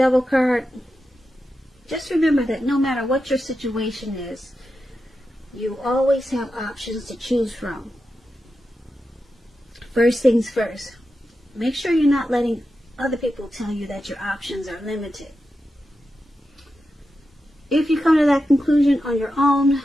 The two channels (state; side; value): normal; both; correlation 0.90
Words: card, just remember that no matter what your situation is, you always have options to choose from. First things first, make sure you're not letting other people tell you that your options are limited. If you come to that conclusion on your own,